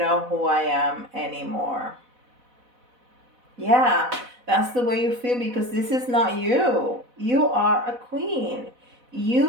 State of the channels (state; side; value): late; left; 4.0 ms